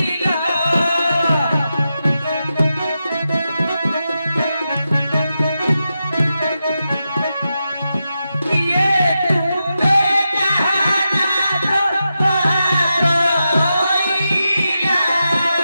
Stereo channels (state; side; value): inverted; both; correlation -0.89